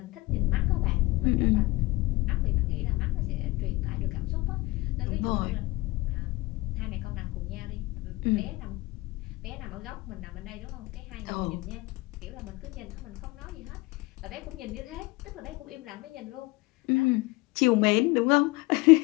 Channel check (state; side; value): quieter; right; 21.9 dB